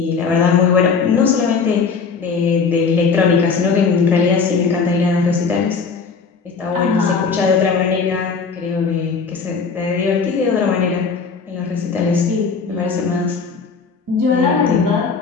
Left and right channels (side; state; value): right; quieter; 5.3 dB